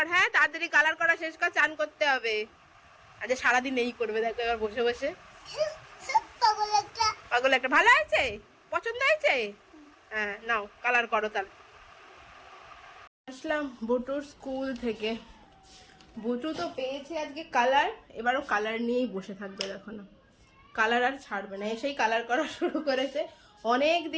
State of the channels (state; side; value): identical; both; correlation 1.00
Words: হ্যাঁ তাড়াতাড়ি কালার করা শেষ কর, চান করতে হবে। আজ সারাদিন এই করবে দেখো এবার বসে বসে। পাগল একটা। ভালো হয়েছে? পছন্দ হয়েছে? হ্যাঁ নাও কালার করো তাহলে। আসলাম বুটুর স্কুল থেকে। বুটু তো পেয়েছে আজকে কালার, এবারও কালার নিয়েই বসে থাকবে দেখো না, কালার আর ছাড়বে না। এসেই কালার করা শুরু করেছে। অনেক